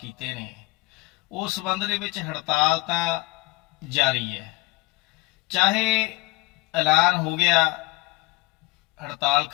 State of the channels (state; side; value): quieter; right; 22.1 dB